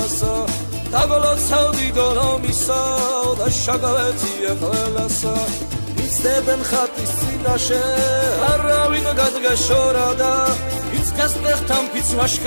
დაგოლოცავდი დოლომისა და შაგვეძიე ყველასა იცდებენ ხატის წინაშე არავინ გადგაშორადა ვინც გასტეხთან ვინც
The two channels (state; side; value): inverted; both; correlation -1.00